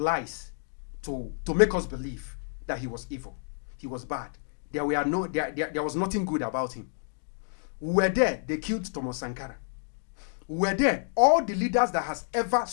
to make us believe that he was evil, he was bad. There was nothing good about him. We were there. They killed Thomas Sankara. We were there. All the leaders that has ever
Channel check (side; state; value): right; silent; digital silence